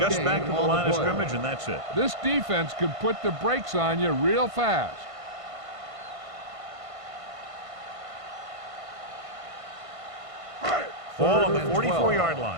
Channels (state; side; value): late; left; 1.5 ms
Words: back to the line of scrimmage, and that's it. This defense can put the brakes on you real fast. Ball on the 44-yard